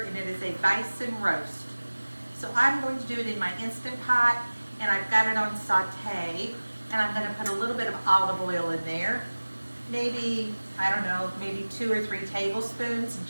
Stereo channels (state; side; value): inverted; both; correlation -1.00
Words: and it is a bison roast. So I'm going to do it in my Instant Pot, and I've got it on saute, and I'm going to put a little bit of olive oil in there. Maybe, I don't know, maybe 2 or 3 tablespoons,